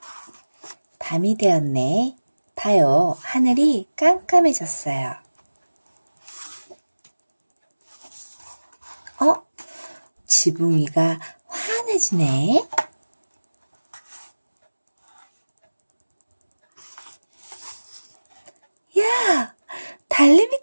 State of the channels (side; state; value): both; inverted; correlation -1.00